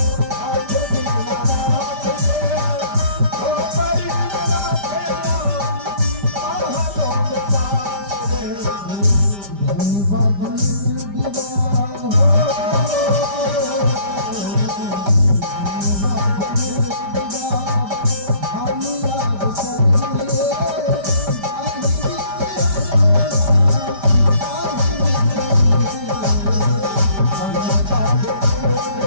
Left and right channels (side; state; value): left; late; 5.1 ms